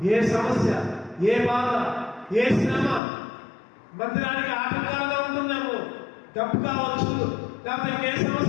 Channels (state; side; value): drops out; right; at 3.0 s